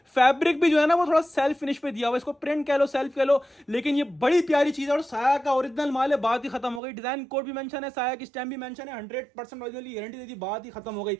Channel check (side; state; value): left; drops out; at 6.8 s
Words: फैब्रिक भी जो है ना वो थोड़ा सेल्फ फिनिश पे दिया हुआ है, इसको प्रिंट कह लो सेल्फ कह लो, लेकिन ये बड़ी प्यारी चीज है। और साया का ओरिजिनल माल है, बात ही खत्म हो गई। डिजाइन कोड भी मेंशन है, साया की स्टैम्प भी मेंशन है, 100% ओरिजिनल की गारंटी दे दी, बात ही खत्म हो गई।